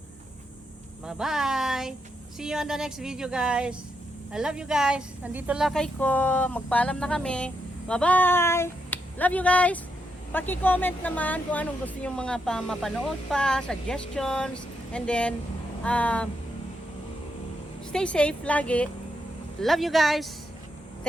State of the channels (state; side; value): normal; both; correlation 0.81